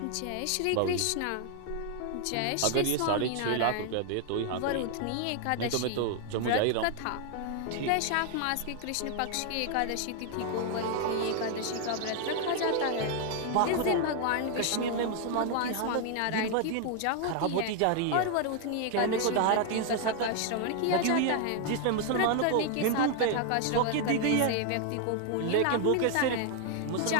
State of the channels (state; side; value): different; both; correlation 0.00